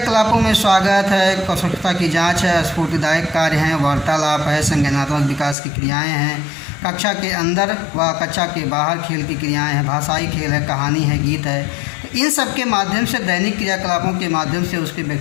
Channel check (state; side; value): drops out; right; at 5.6 s